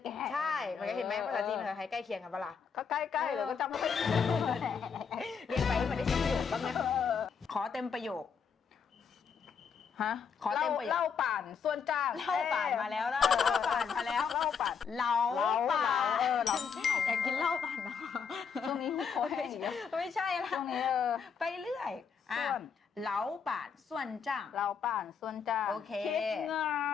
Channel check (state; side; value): quieter; right; 6.4 dB